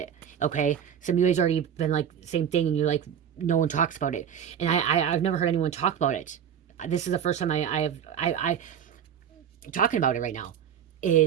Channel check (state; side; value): quieter; left; 8.7 dB